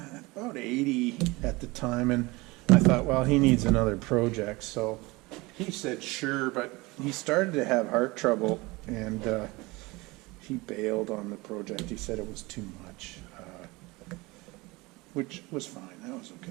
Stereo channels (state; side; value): quieter; left; 23.0 dB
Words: 80 at the time, and I thought, well, he needs another project. So he said sure, but he started to have heart trouble, and he bailed on the project. He said it was too much, which was fine. That was